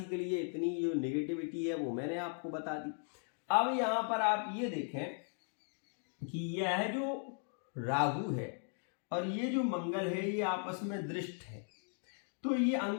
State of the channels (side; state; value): right; silent; 53 dB below the other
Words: के लिए इतनी जो नेगेटिविटी है वो मैंने आपको बता दी। अब यहां पर आप ये देखें कि यह जो राहु है और ये जो मंगल है ये आपस में दृष्ट है, तो ये